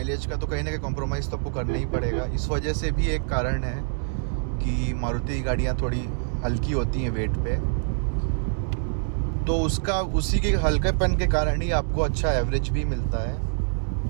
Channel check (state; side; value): silent; left; digital silence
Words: का, तो कहीं ना कहीं कॉम्प्रोमाइज़ तो आपको करना ही पड़ेगा। इस वजह से भी एक कारण है कि मारुति की गाड़ियाँ थोड़ी हल्की होती हैं वेट पे। तो उसी के हल्केपन के कारण ही आपको अच्छा एवरेज भी मिलता है।